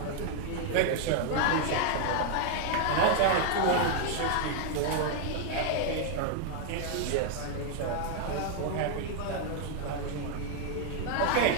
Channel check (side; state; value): both; different; correlation 0.00